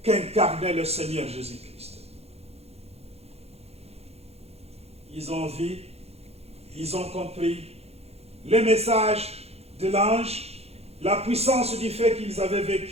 qu'incarnait le Seigneur Jésus-Christ. Ils ont vu, ils ont compris le message de l'ange, la puissance du fait qu'ils avaient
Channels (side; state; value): left; late; 0.30 ms